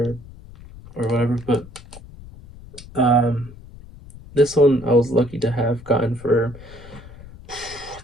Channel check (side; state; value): left; noise; rumble, 18 dB below the sound